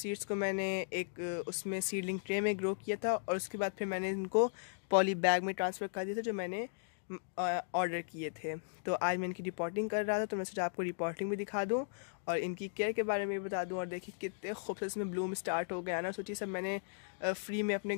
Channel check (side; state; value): right; silent; digital silence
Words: को मैंने एक उसमें सीडलिंग ट्रे में ग्रो किया था, और उसके बाद फिर मैंने इनको पॉली बैग में ट्रांसफ़र कर दिया था जो मैंने ऑर्डर किए थे। तो आज मैं इनकी रिपोर्टिंग कर रहा था, तो मैं सोचा आपको रिपोर्टिंग भी दिखा दूं और इनकी केयर के बारे में भी बता दूं। और देखिए कितने खूबसूरत इसमें ब्लूम स्टार्ट हो गया ना। सोचिए सब मैंने फ्री में अपने